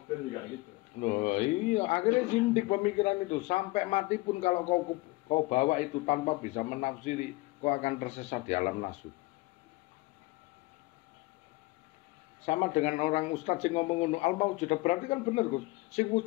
juga gitu. Loh, iya, akhirnya zindik pemikiran itu. Sampai mati pun kalau kau bawa itu tanpa bisa menafsiri, kau akan tersesat di alam nafsu. Sama dengan orang ustadz yang ngomong ngono al-maujud berarti kan bener Gus. Sing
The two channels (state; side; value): quieter; right; 22.1 dB